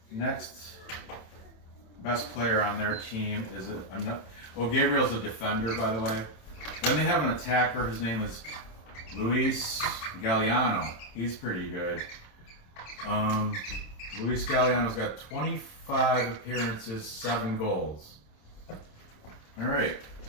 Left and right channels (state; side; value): late; right; 27 ms